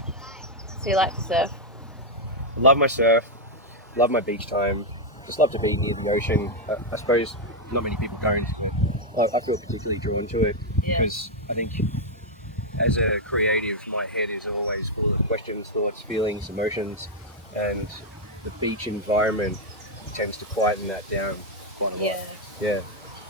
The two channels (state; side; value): normal; both; correlation -0.01